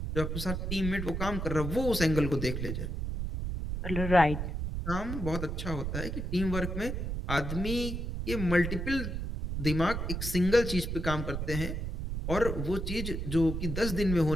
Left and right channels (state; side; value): noise; right; rumble, 3 dB below the sound